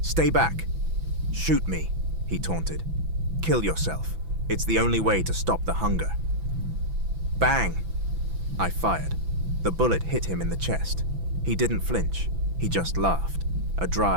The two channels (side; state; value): left; late; 6.0 ms